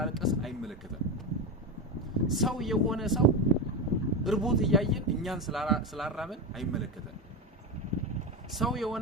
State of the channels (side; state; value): both; normal; correlation 0.16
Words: አይመለከተን ሰው የሆነ ሰው እርቦት ያያየን እኛን ስላራበን አይመለከተን ሰው